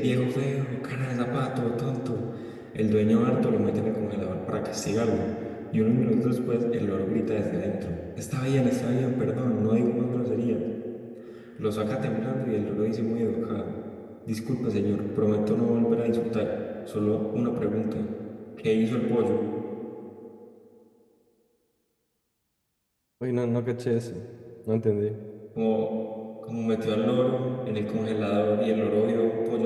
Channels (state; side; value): identical; both; correlation 1.00